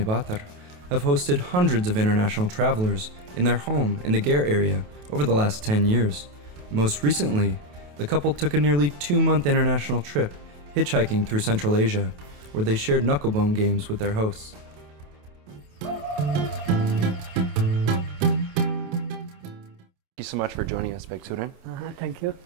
have hosted hundreds of international travelers in their home in the Gare area over the last 10 years. Most recently, the couple took a nearly 2-month international trip hitchhiking through Central Asia, where they shared knucklebone games with their hosts. Thank you so much for joining us, Bэгzsүrэн. Thank you.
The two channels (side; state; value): left; late; 28 ms